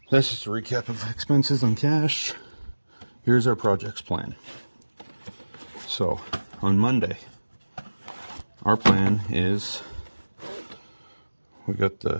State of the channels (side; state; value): both; inverted; correlation -1.00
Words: That's just a recap of expenses on cash. Here's our projects plan. So on Monday, our plan is we got